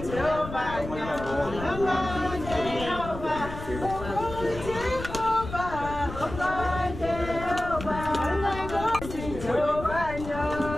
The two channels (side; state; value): left; noise; rumble, 10 dB below the sound